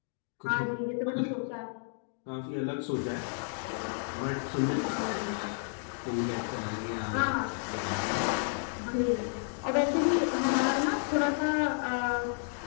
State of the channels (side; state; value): right; silent; 57 dB below the other